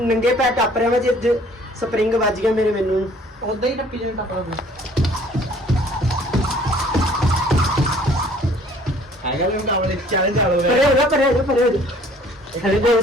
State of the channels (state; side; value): normal; both; correlation 0.56